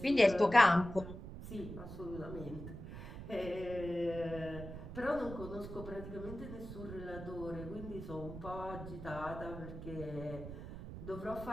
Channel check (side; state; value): right; noise; rumble, 10 dB below the sound